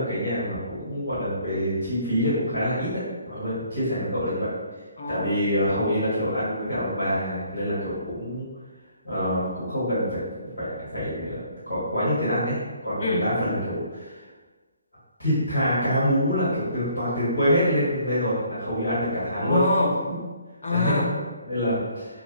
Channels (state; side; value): inverted; both; correlation -0.61